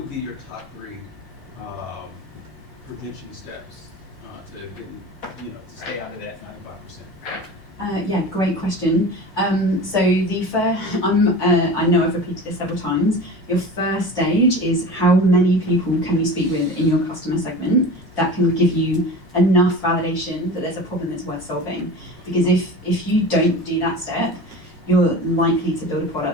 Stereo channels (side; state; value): both; normal; correlation 0.34